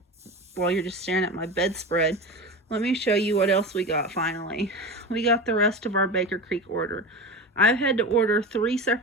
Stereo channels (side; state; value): both; normal; correlation 0.26